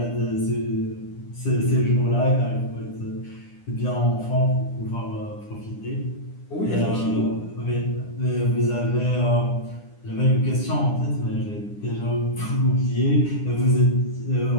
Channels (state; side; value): late; right; 9.8 ms